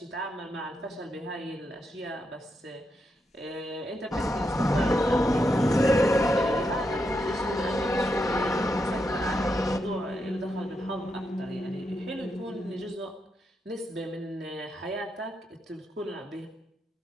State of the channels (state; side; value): normal; both; correlation 0.83